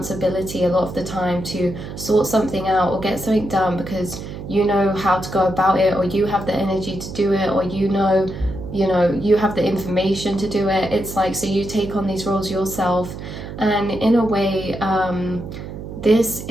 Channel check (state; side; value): noise; right; hum, 10 dB below the sound